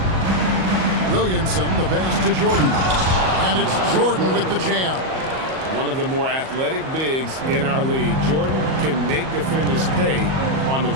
Williamson, the pass to Jordan. And it's Jordan with the jam. One of the more athletic bigs in our league. Jordan can make defenders pay on the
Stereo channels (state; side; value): late; left; 38 ms